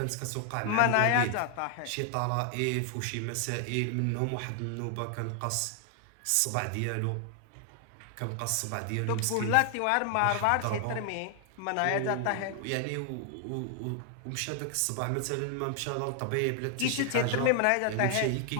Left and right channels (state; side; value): different; both; correlation 0.00